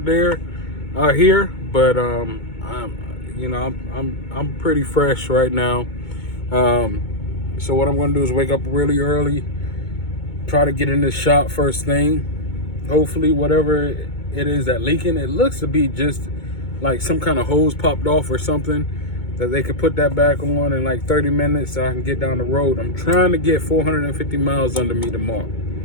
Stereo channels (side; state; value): right; late; 2.2 ms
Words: here, but I'm pretty fresh right now. So what I'm going to do is wake up really early, try to get in this shop first thing. Hopefully whatever it is that leaking, it looks to be just like some kind of hose popped off or something, that they could put that back on in like 30 minutes so I can get down the road. I'm trying to get 450 miles under me tomorrow.